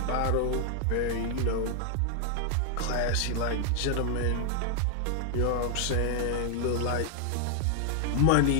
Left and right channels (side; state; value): both; different; correlation 0.00